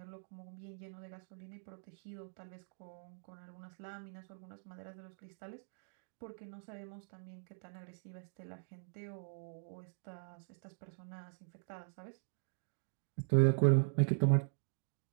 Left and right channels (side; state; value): left; silent; digital silence